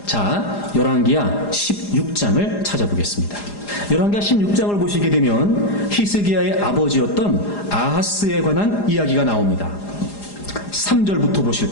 자, 열왕기하 16장을 찾아보겠습니다. 열왕기하 16장을 보시게 되면 히스기야의 아버지였던 아하스에 관한 이야기가 나옵니다. 3절부터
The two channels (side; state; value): right; late; 4.9 ms